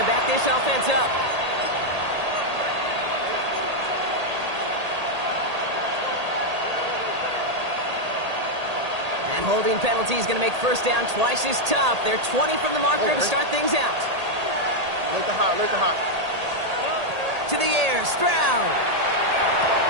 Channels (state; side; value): late; left; 1.8 ms